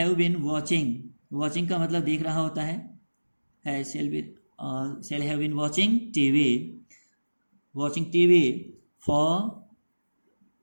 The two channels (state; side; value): inverted; both; correlation -1.00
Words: been watching का मतलब देख रहा होता है। Shall have been watching TV for